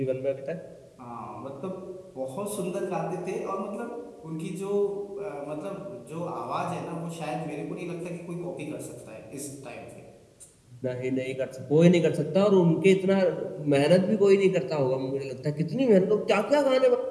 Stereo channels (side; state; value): both; identical; correlation 1.00